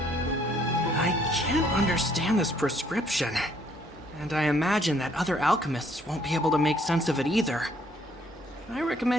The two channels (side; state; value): both; normal; correlation 0.65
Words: can't understand this prescription. And I imagine that other alchemists won't be able to make sense of it either. I